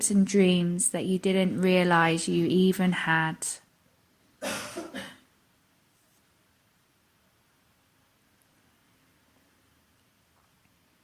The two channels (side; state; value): both; identical; correlation 1.00